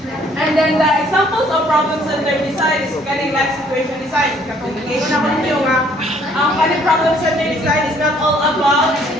And then the examples of problem-centered design is kaning life situation design. Ngayon na ko niyo nga ang kaning problem-centered design is not all about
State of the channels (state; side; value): normal; both; correlation 0.61